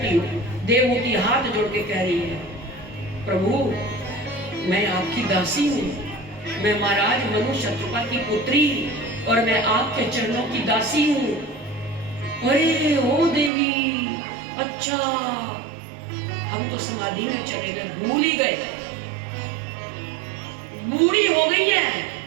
हो? देवहूति हाथ जोड़ के कह रही है, प्रभु मैं आपकी दासी हूँ, मैं महाराज मनु शत्रुपा की पुत्री और मैं आपके चरणों की दासी हूँ। अरे ओ देवी, अच्छा हम तो समाधि में चले गए, भूल ही गए, बूढ़ी हो गई है,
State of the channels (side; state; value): left; drops out; at 13.5 s